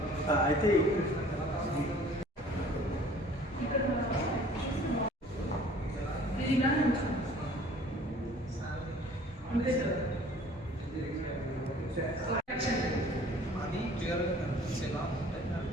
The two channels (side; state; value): both; normal; correlation 0.51